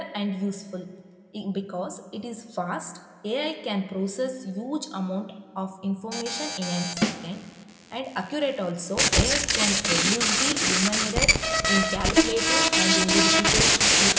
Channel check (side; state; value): both; identical; correlation 1.00